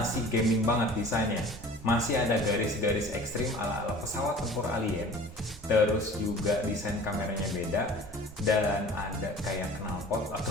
gaming banget desainnya. Masih ada garis-garis ekstrim ala-ala pesawat tempur alien. Terus juga desain kameranya beda. Dan ada kayak knalpot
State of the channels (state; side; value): normal; both; correlation 0.44